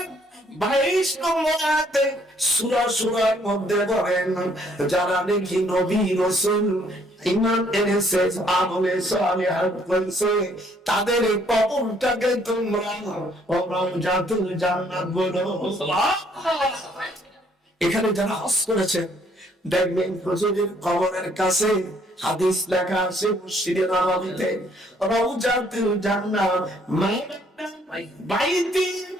22 নম্বর আয়াতে সূরার মধ্যে বলেন, যারা নাকি নবী রাসূল ঈমান এনেছে, আমলে সালিহাত করেছে, তাদের কবরটাকে তোমরা রাওজাতুল জান্নাত বলো। এখানে যারা হজ করেছে দেখবেন হুজুরের কবরের কাছে হাদিস লেখা আছে, মসজিদে নববীতে রাওজাতুল জান্নাত বাইতি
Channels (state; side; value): normal; both; correlation 0.65